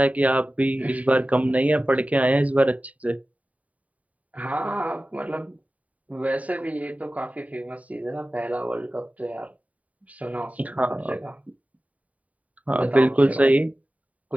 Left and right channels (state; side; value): late; left; 0.069 ms